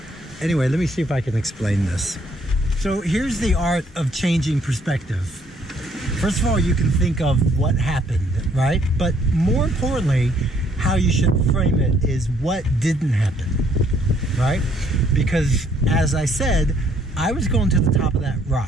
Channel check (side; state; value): both; normal; correlation 0.66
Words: Anyway, let me see if I can explain this. So here's the art of changing perspective. First of all, you can think of what happened, right? But more importantly, how you should frame it is what didn't happen, right? Because as I said, I was going to the top of that